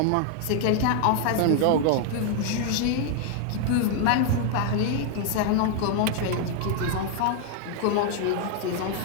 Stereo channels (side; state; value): both; different; correlation 0.00